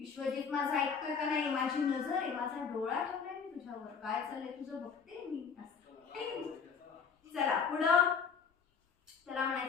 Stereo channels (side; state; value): right; quieter; 6.1 dB